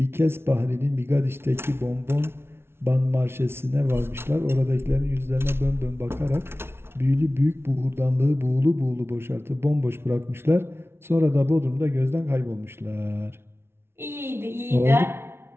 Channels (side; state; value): left; late; 0.12 ms